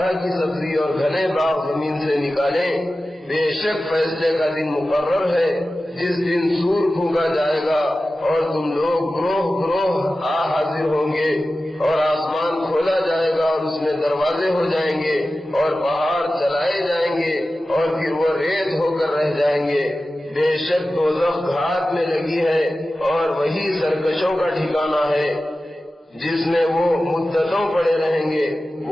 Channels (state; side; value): normal; both; correlation 0.94